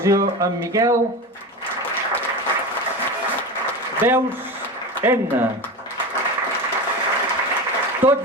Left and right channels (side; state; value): both; normal; correlation 0.25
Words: en Miquel. Veus, Edna.